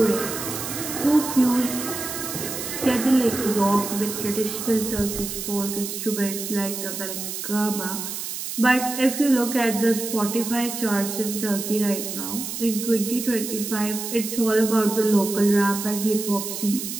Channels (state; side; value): noise; right; hiss, 6 dB below the sound